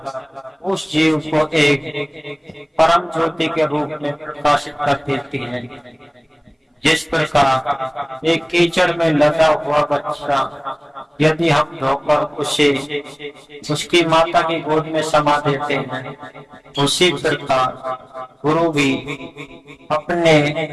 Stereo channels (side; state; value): both; identical; correlation 1.00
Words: उस जीव को एक परम ज्योति के रूप में प्रकाशित कर देती है। जिस प्रकार एक कीचड़ में लगा हुआ बच्चा यदि हम धोकर उसे उसकी माता की गोद में समा देते हैं, उसी प्रकार गुरु भी अपने